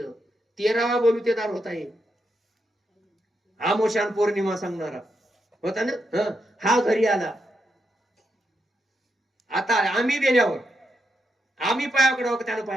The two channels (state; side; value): normal; both; correlation 0.82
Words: 13वा बोलूतेदार होता हे. आमोशान पौर्णिमा सांगणारा होता ना. हा घरी आला. आता आम्ही गेल्यावर आम्ही पाया पडावं का त्यानं